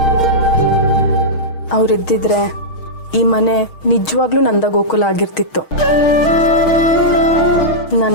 ಅವರಿದ್ದಿದ್ರೆ ಈ ಮನೆ ನಿಜವಾಗ್ಲೂ ನಂದ ಗೋಕುಲ ಆಗಿರ್ತಿತ್ತು. ನಾನು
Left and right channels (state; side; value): late; right; 6.4 ms